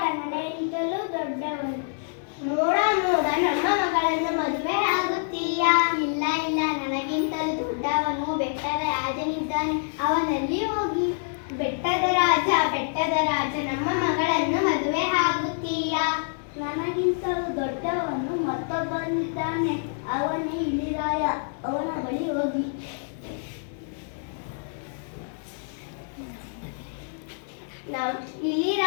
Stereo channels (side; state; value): right; silent; digital silence